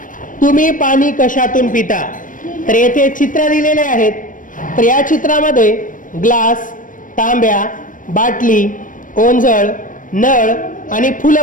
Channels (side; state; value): right; late; 0.38 ms